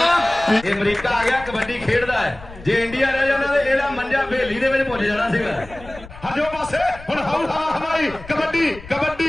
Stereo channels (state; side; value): noise; left; rumble, 17 dB below the sound